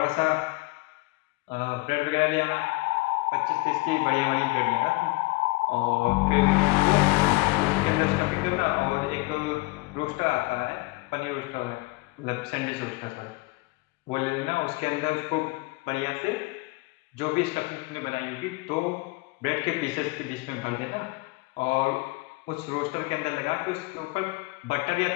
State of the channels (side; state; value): right; quieter; 24.1 dB